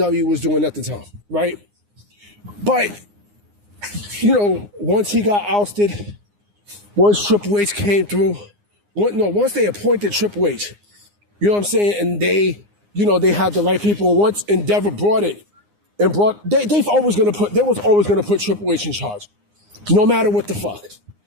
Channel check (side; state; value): left; late; 9.7 ms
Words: was doing at the time, right? But, once he got ousted, once Triple H came through, once they appointed Triple H, you know what I'm saying? And they had the right people. Once Endeavor brought it, and they was always gonna put Triple H in charge, no matter what the fuck,